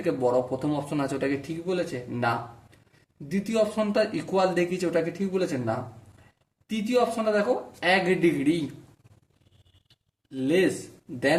বড়, প্রথম অপশন আছে, ওটাকে ঠিক বলেছে? না। দ্বিতীয় অপশনটা ইকুয়াল দেখিয়েছে, ওটাকে ঠিক বলেছে? না। তৃতীয় অপশনটা দেখো, 1 ডিগ্রি লেস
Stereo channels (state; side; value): identical; both; correlation 1.00